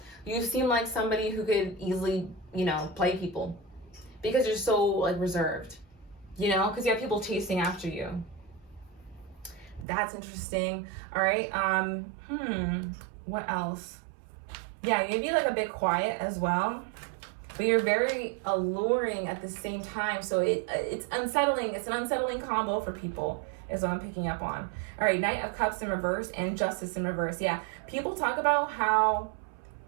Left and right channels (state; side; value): drops out; left; at 9.9 s